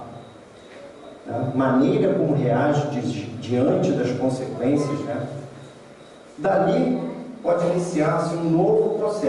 né? Maneira como reage diante das consequências, né? Dali pode iniciar-se um novo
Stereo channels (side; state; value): both; identical; correlation 1.00